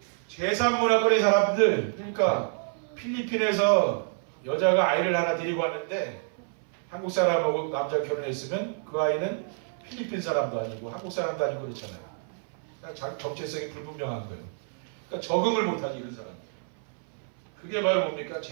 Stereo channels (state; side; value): silent; left; 59 dB below the other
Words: 제3문화권의 사람들, 그러니까 필리핀에서 여자가 아이를 하나 데리고 왔는데 한국 사람하고 남자 결혼했으면 그 아이는 필리핀 사람도 아니고 한국 사람도 아니고 그렇잖아요. 그러니까 정체성이 불분명한 거예요. 그러니까 적응을 못하지 이런 사람들. 그게 바로 뭡니까?